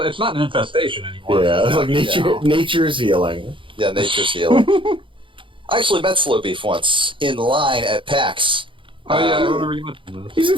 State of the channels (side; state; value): left; late; 0.25 ms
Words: an infestation anymore. Yeah, it's like Yeah. nature's healing. Yeah, nature's healing. I actually met Slow Beef once in line at PAX. Oh yeah, I remember you mentioned this. He